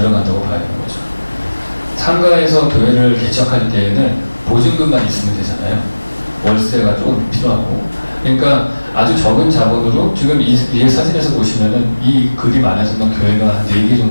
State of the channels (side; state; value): both; inverted; correlation -1.00